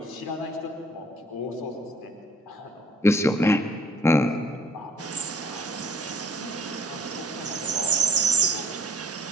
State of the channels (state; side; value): normal; both; correlation 0.56